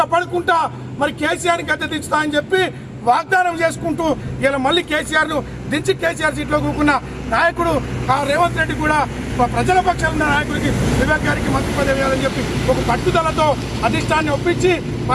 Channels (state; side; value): identical; both; correlation 1.00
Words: మరి కేసీఆర్ గద్దె దించుతా అని చెప్పి వాగ్దానం చేసుకుంటూ ఇలా మళ్ళీ కేసీఆర్ సీట్లో కూకున్న నాయకుడు రేవంత్ రెడ్డి కూడా ప్రజల పక్షాలు ఉన్న నాయకుడికి వివేక్ గారికి మంత్రి పదవి ఇవ్వాలని చెప్పి ఒక పట్టుదలతో అధిష్టాన్ని ఒప్పించి